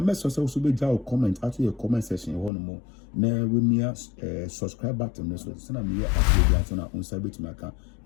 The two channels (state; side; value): drops out; right; at 2.5 s